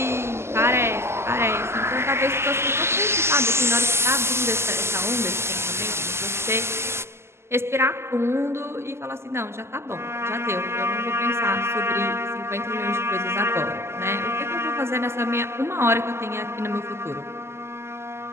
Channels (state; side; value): late; left; 0.12 ms